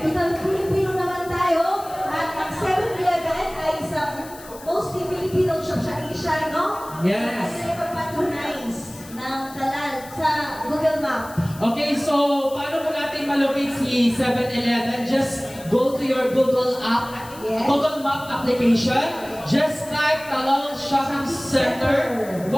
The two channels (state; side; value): noise; left; hiss, 18 dB below the sound